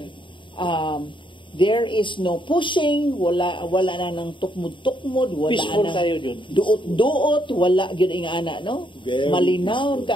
there is no pushing, wala na nang tukmod-tukmod, wala peaceful na tayo dun. Duot, wala gyud ing ana, no? Very Malinaw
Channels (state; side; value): late; right; 0.24 ms